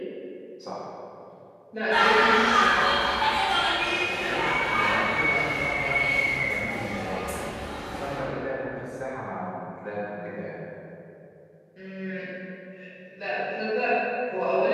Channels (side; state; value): both; identical; correlation 1.00